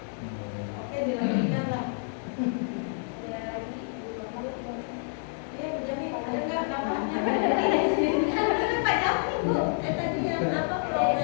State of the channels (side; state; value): right; silent; 59 dB below the other